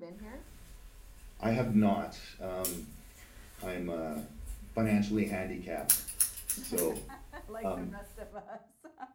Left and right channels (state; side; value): identical; both; correlation 1.00